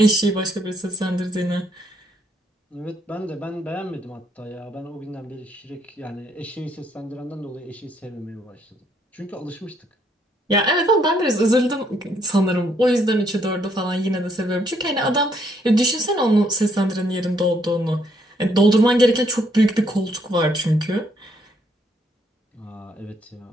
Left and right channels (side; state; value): both; normal; correlation 0.71